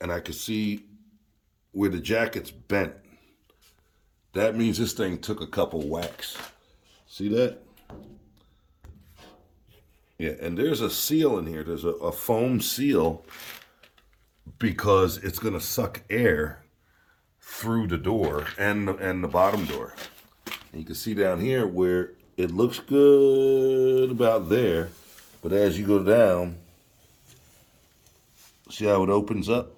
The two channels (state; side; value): identical; both; correlation 1.00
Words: I could see where the jacket's bent. That means this thing took a couple whacks. See that? Yeah, and there's a seal in here. There's a foam seal because it's going to suck air through the door and the bottom door. And you can see down here where it looks good about there, but as you go down, see how it opens up?